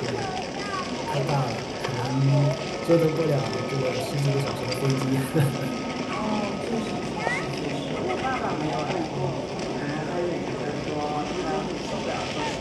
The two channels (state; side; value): identical; both; correlation 1.00